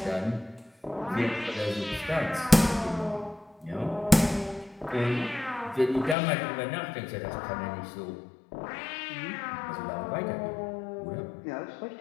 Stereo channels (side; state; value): right; drops out; at 6.2 s